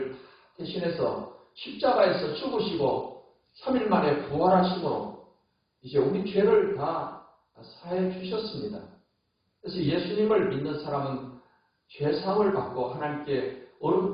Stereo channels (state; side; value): identical; both; correlation 1.00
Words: 대신해서 십자가에서 죽으시고 3일 만에 부활하심으로 이제 우리 죄를 다 사해 주셨습니다. 그래서 예수님을 믿는 사람은 죄사함을 받고 하나님께